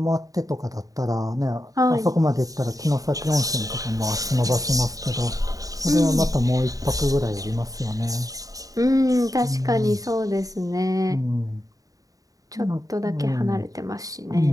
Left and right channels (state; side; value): late; left; 0.17 ms